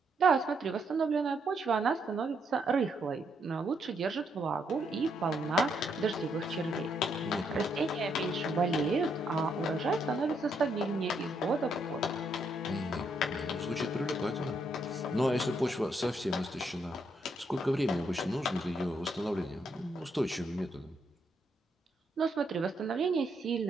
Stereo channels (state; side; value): normal; both; correlation 0.76